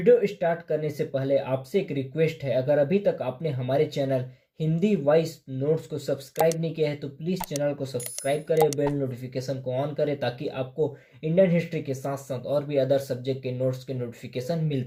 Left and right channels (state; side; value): identical; both; correlation 1.00